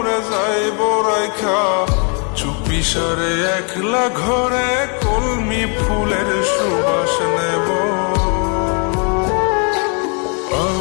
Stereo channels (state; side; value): quieter; right; 38.0 dB